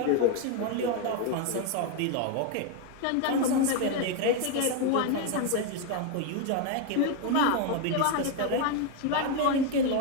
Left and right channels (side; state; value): both; different; correlation 0.01